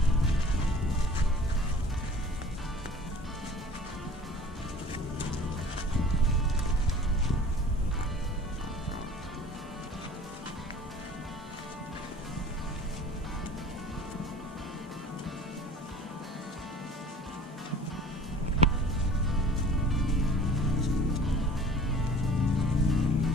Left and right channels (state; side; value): normal; both; correlation 0.47